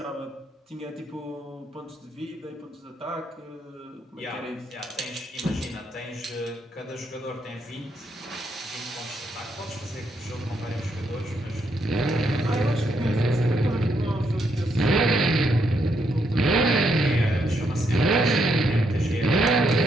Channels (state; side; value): normal; both; correlation 0.77